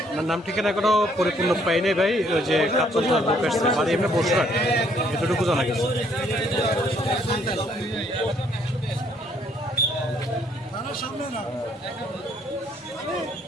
নাম ঠিকানা এখনো পরিপূর্ণ পাই নাই ভাই। ওই যে কাপড় লোক আসছে বাড়ি এমনি বসে এতটুকু জানা গেছে।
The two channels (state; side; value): normal; both; correlation 0.66